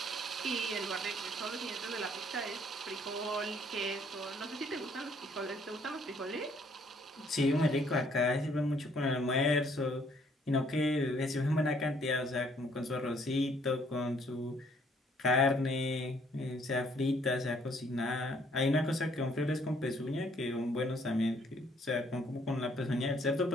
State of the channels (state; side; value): normal; both; correlation 0.64